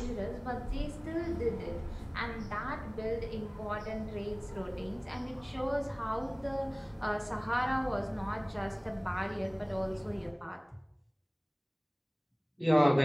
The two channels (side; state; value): both; identical; correlation 1.00